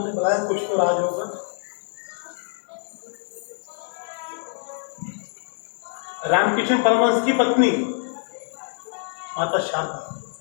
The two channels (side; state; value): right; silent; digital silence